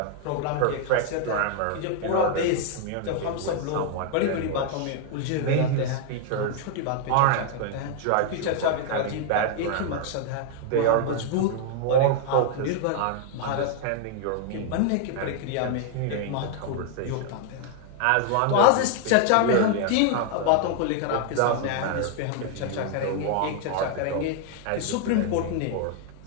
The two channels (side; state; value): both; different; correlation 0.00